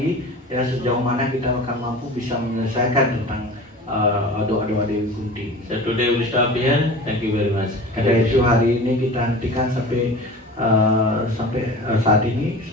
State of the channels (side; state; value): both; normal; correlation 0.37